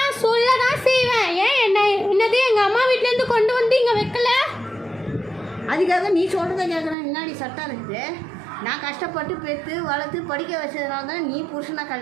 சொல்ல தான் செய்வேன். ஏன் என்னது எங்கள் அம்மா வீட்டிலேருந்து கொண்டு வந்து இங்கே வைக்கல? அதுக்காக நீ சொல்கிறத கேட்கணும் என்னடி சட்டம் இருக்குது? நான் கஷ்டப்பட்டு பெற்று வளர்த்து படிக்க வச்சதுனால தான் நீ புருஷனை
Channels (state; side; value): drops out; left; at 7.0 s